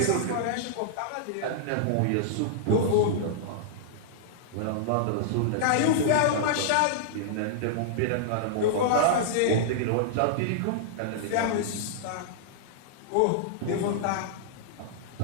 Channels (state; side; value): different; both; correlation -0.01